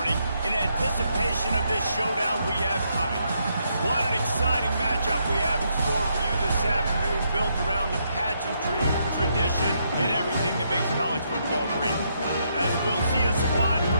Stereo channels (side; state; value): both; inverted; correlation -0.76